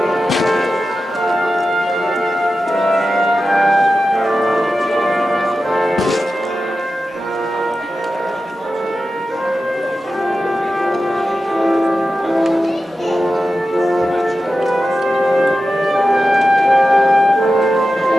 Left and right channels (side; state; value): both; normal; correlation 0.92